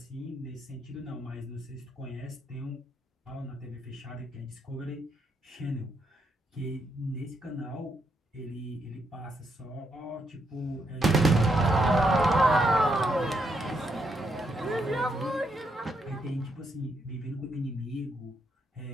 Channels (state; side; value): normal; both; correlation 0.78